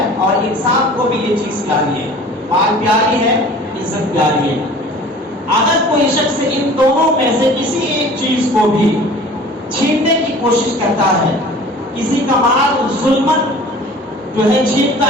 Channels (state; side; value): normal; both; correlation 0.45